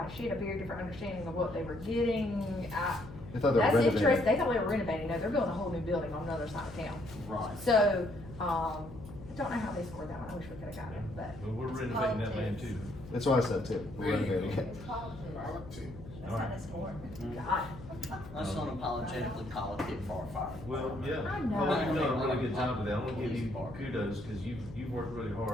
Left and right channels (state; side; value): noise; left; hum, 14 dB below the sound